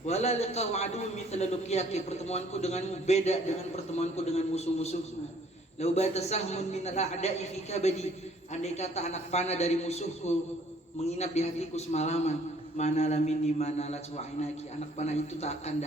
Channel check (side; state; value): both; normal; correlation 0.59